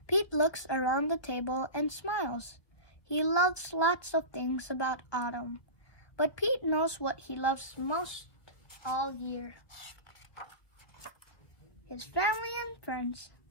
Pete looks around the table and smiles. He loves lots of things about autumn, but Pete knows what he loves most all year. His family and friends.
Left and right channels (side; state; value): right; late; 1.6 ms